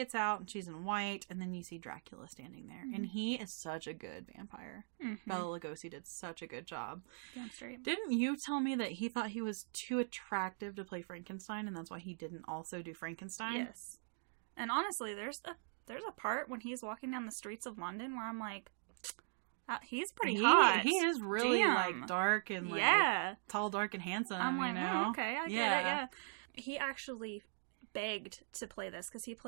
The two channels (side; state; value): left; silent; digital silence